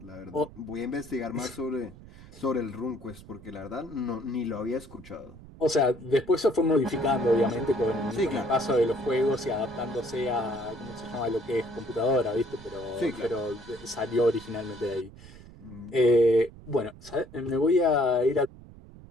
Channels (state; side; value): noise; right; rumble, 19 dB below the sound